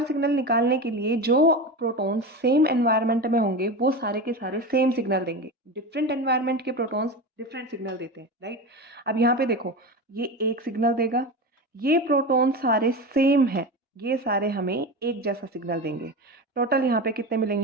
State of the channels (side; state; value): both; normal; correlation 0.24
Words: सिग्नल निकालने के लिए जो प्रोटॉन्स सेम एनवायरनमेंट में होंगे वो सारे के सारे सेम सिग्नल देंगे। डिफरेंट एनवायरनमेंट के प्रोटॉन्स डिफरेंट सिग्नल देते हैं, राइट। अब यहाँ पे देखो ये एक सिग्नल देगा, ये प्रोटॉन सारे सेम हैं, ये सारे हमें एक जैसा सिग्नल देंगे। टोटल यहाँ पे कितने